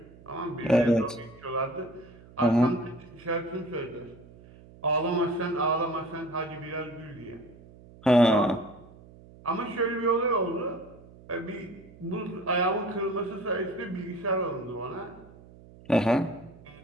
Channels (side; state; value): right; noise; hum, 22 dB below the sound